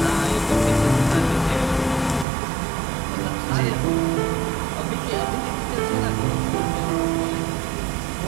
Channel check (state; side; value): drops out; left; at 2.2 s